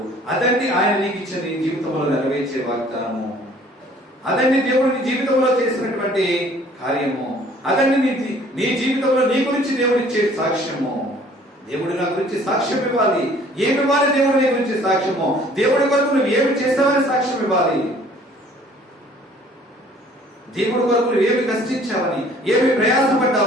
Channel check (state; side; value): normal; both; correlation 0.55